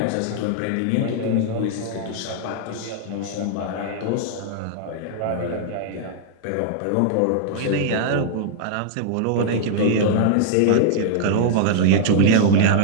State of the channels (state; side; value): different; both; correlation -0.01